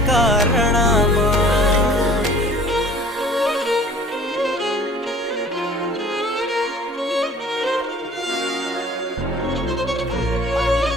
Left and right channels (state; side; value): normal; both; correlation 0.49